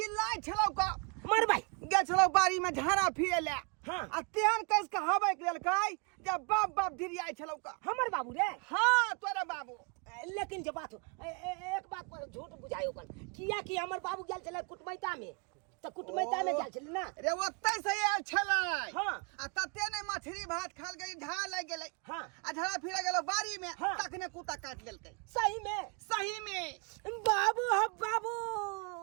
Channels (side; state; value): left; quieter; 34.0 dB